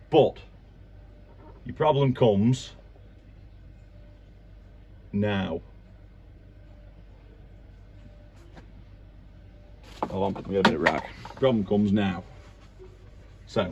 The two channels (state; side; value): identical; both; correlation 1.00